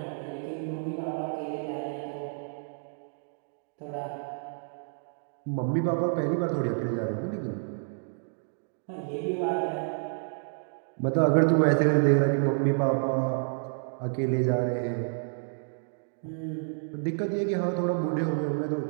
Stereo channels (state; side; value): silent; left; digital silence